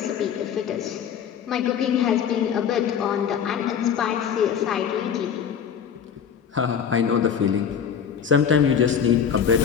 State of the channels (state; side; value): quieter; right; 7.8 dB